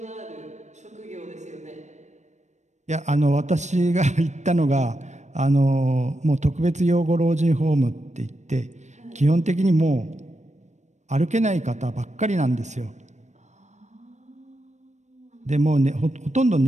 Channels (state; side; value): late; left; 0.34 ms